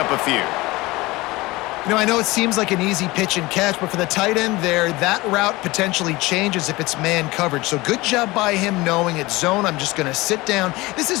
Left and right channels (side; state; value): right; quieter; 21.1 dB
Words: a few. You know, I know it seems like an easy pitch and catch, but for the tight end there, that route potentially changes if it's man coverage. So good job by him knowing it's zone. I'm just going to sit down. This is